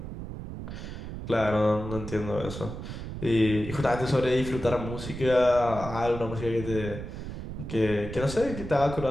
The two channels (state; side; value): noise; right; rumble, 8 dB below the sound